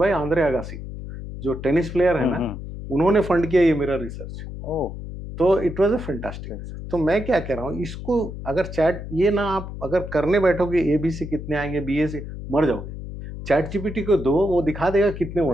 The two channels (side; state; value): left; noise; hum, 9 dB below the sound